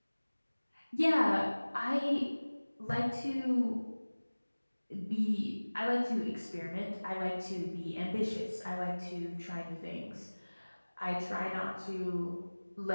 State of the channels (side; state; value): both; inverted; correlation -1.00